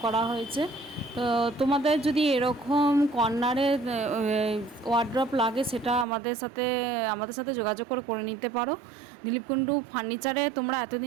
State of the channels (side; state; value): left; drops out; at 6.1 s